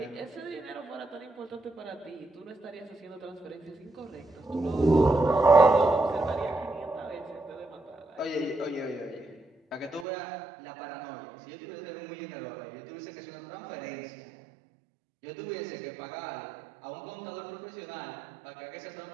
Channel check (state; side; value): drops out; left; at 10.1 s